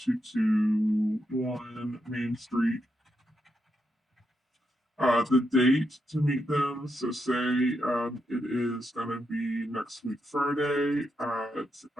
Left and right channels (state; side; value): normal; both; correlation 0.83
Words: Main Street. The date to meet them, so say it is going to be next week Friday at,